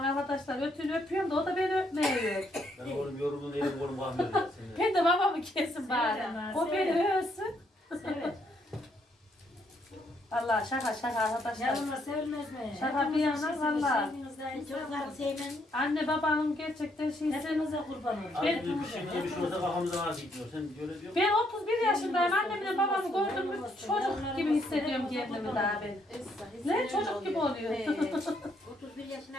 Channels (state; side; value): normal; both; correlation 0.72